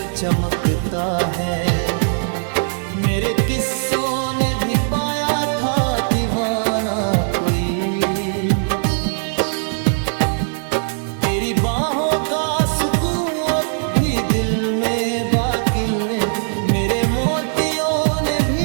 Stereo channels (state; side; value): silent; left; digital silence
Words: चमकता है, मेरे किस्सों ने भी पाया था दीवाना कोई। तेरी बाहों का सुकून अब भी दिल में बाकी है, मेरे मोतियों ने